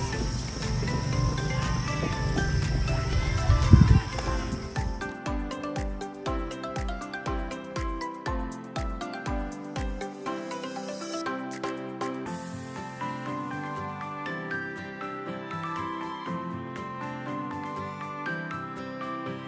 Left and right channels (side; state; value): both; identical; correlation 1.00